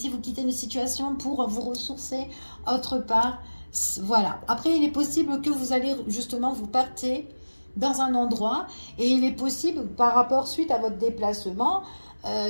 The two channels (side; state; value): both; inverted; correlation -1.00